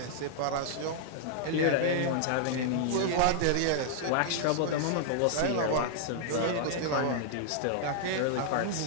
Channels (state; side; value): different; both; correlation -0.01